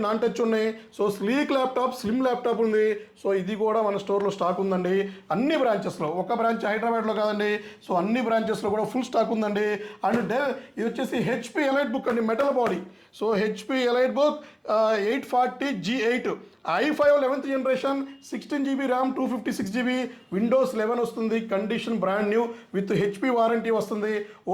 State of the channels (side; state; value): both; identical; correlation 1.00